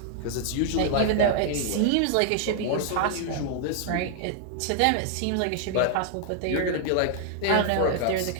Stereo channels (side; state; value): both; different; correlation 0.00